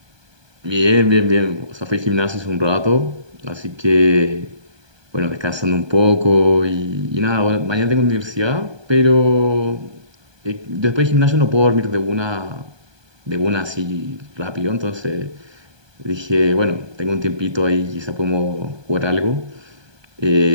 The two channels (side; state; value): left; late; 1.2 ms